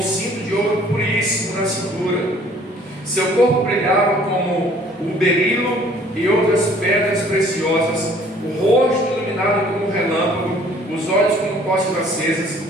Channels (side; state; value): both; normal; correlation 0.56